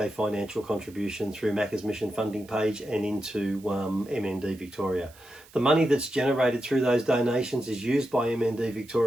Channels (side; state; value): right; noise; hiss, 24 dB below the sound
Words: financial contribution through Macka's mission funding page and into MND Victoria. The money that's generated through those donations is used by MND